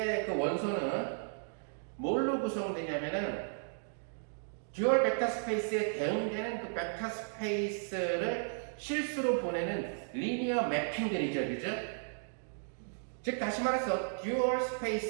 그 원소는 뭘로 구성되냐면은, 듀얼 벡터 스페이스에 대응되는 그 벡터 스페이스를 실수로 보내는 리니어 매핑들이죠, 그죠? 즉 다시 말해서 듀얼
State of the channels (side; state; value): left; silent; digital silence